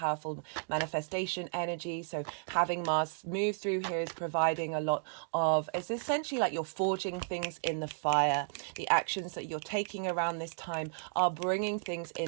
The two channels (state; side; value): silent; left; digital silence